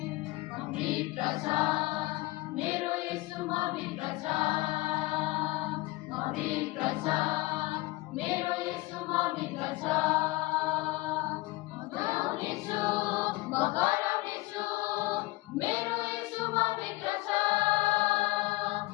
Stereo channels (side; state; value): right; quieter; 20.8 dB